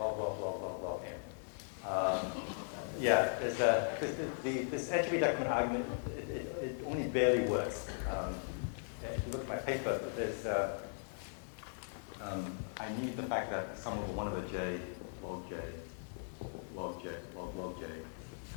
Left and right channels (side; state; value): right; silent; digital silence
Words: n. Yeah, there's this entropy decrement argument, it only barely works. If you look at my paper, there's I need the fact that sum over 1 over j, log j, log j, log j,